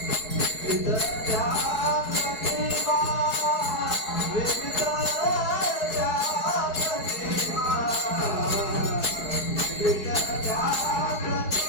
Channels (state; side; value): late; right; 4.7 ms